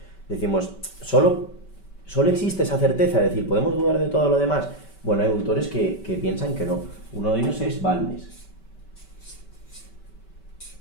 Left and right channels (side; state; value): right; late; 5.2 ms